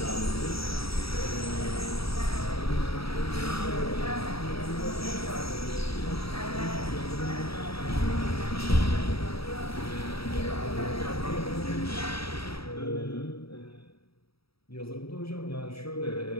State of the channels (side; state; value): right; late; 0.76 ms